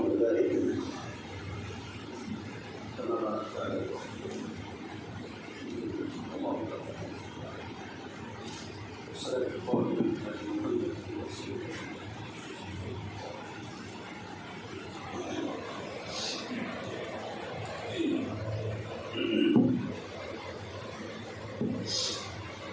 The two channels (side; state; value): both; identical; correlation 1.00